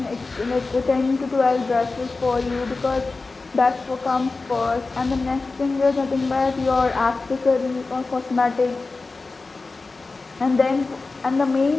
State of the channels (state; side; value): quieter; right; 3.8 dB